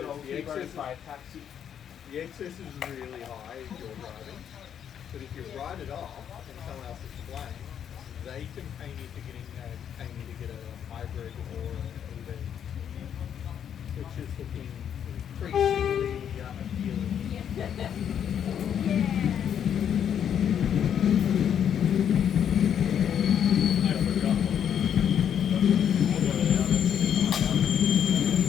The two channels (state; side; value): quieter; right; 8.8 dB